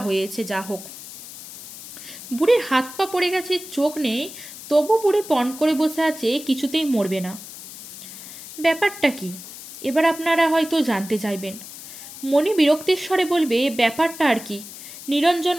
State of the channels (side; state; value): left; noise; hiss, 14 dB below the sound